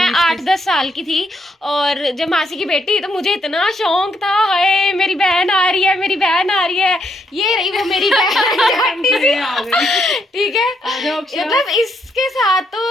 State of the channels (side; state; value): both; normal; correlation 0.76